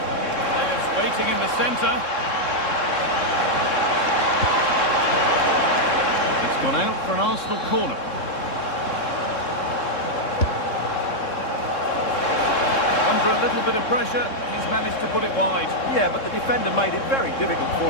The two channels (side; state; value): right; late; 3.7 ms